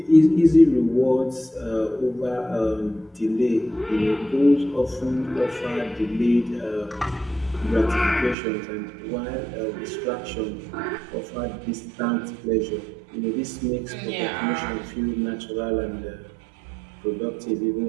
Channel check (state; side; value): drops out; left; at 8.3 s